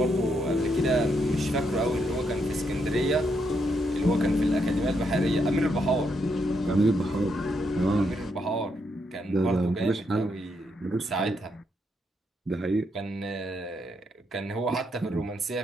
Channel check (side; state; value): both; normal; correlation 0.78